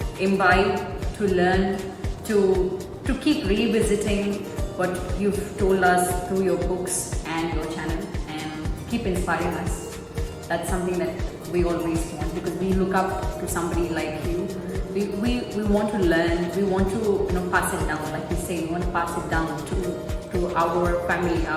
imbibe, to learn, to keep revisiting what you've told us through your books and your channel, and keep inspiring us. That's something that we always want, because we look up to somebody like you. We want to learn, we want to pass it down, like you say, we want to pass it down to our family,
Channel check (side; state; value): both; identical; correlation 1.00